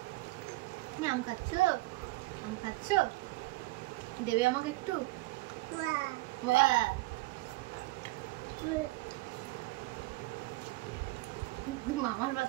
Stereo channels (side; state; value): left; quieter; 20.9 dB